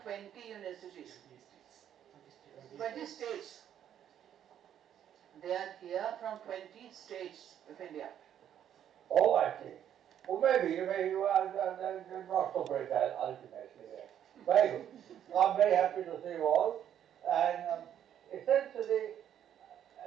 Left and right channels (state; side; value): quieter; left; 10.0 dB